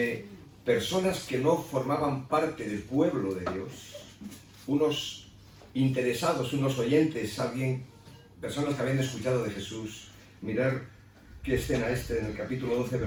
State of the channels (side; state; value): both; identical; correlation 1.00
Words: personas que no formaban parte del pueblo de Dios, unos interesados, unos oyentes, personas que habían escuchado de Jesús, mirar qué escena en el capítulo 12,